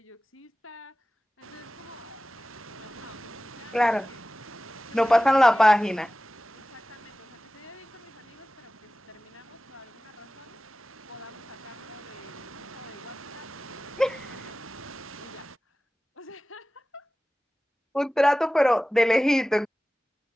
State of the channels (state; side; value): normal; both; correlation 0.96